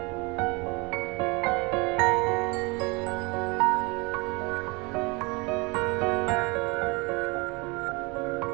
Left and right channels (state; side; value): quieter; left; 27.8 dB